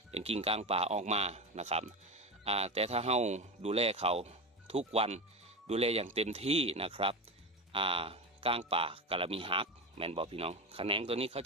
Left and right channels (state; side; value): normal; both; correlation 0.20